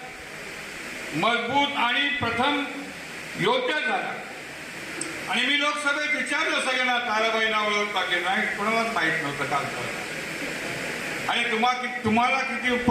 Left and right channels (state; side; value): identical; both; correlation 1.00